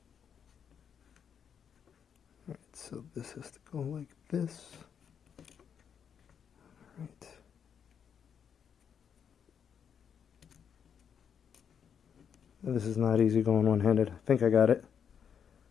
Alright, so this has to go like this. Alright. This is not easy going one-handed. I think I got it.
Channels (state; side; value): quieter; right; 7.6 dB